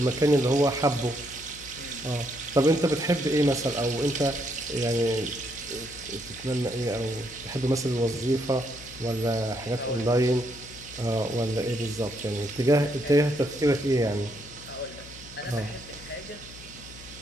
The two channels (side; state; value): left; noise; hum, 18 dB below the sound